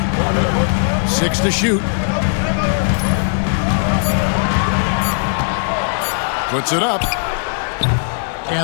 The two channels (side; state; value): right; silent; 68 dB below the other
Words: Six to shoot. Puts it up.